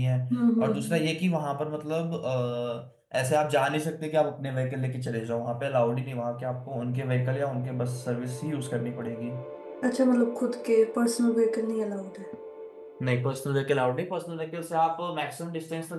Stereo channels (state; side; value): identical; both; correlation 1.00